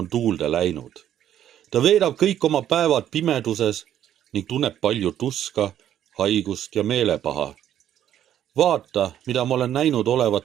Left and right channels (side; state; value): left; quieter; 10.9 dB